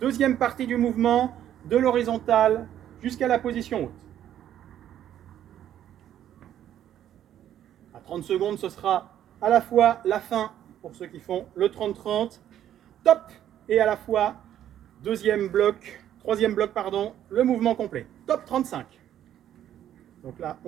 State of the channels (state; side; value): quieter; left; 11.0 dB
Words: Deuxième partie du mouvement, de l'horizontale jusqu'à la position haute. À 30 secondes, ce sera à la fois la fin pour ceux qui font le 30-30. Top. Et à la fois troisième bloc, pardon, le mouvement complet. Top 35. Donc là,